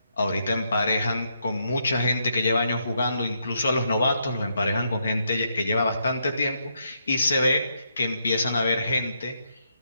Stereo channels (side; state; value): both; inverted; correlation -0.77